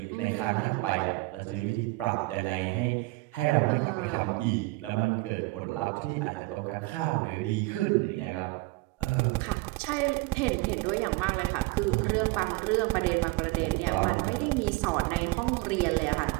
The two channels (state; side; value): quieter; left; 23.3 dB